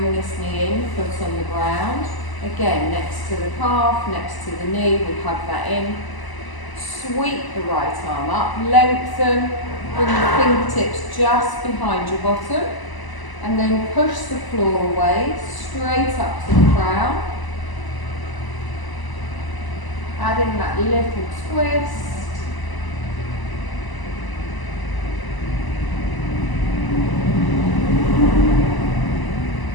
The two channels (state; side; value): late; right; 1.0 ms